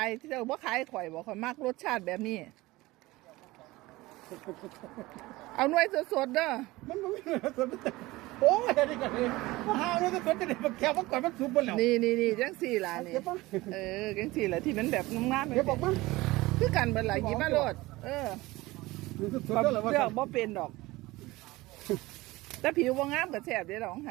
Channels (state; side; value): quieter; left; 19.9 dB